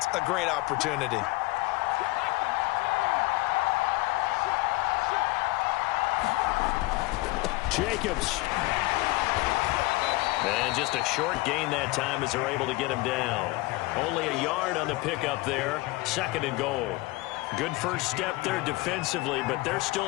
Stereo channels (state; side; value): quieter; right; 21.8 dB